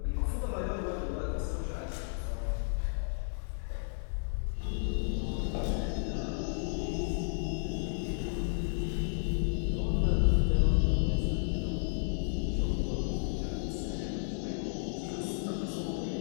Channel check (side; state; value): right; silent; 56 dB below the other